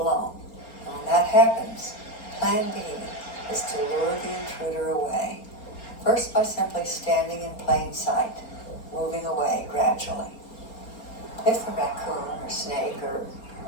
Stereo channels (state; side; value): late; right; 4.3 ms